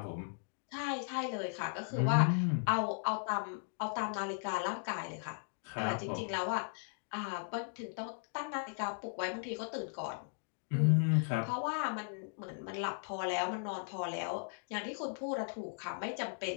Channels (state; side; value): silent; right; digital silence